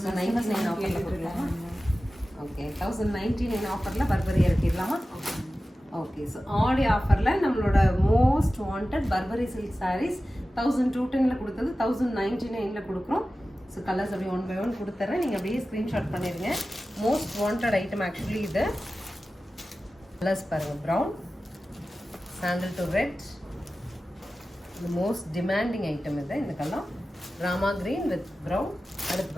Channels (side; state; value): both; normal; correlation 0.95